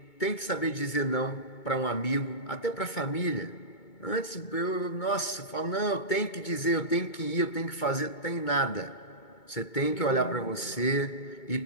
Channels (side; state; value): right; late; 2.2 ms